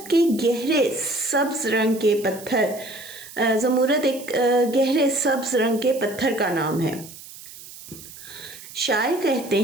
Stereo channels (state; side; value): noise; right; hiss, 16 dB below the sound